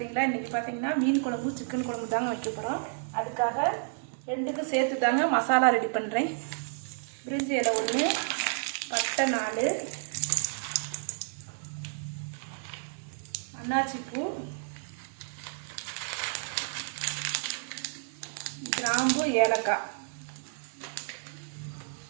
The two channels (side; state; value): left; silent; 57 dB below the other